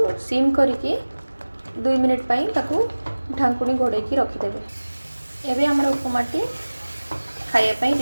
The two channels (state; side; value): inverted; both; correlation -1.00